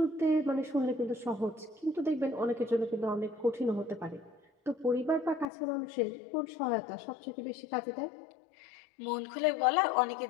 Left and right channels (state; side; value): drops out; right; at 5.5 s